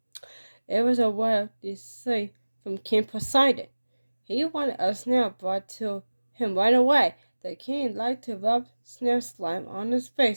It was a word they say from King Poseidon. He wanted a snail brought to him right away. The king liked to rub snail slime on his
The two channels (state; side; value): inverted; both; correlation -1.00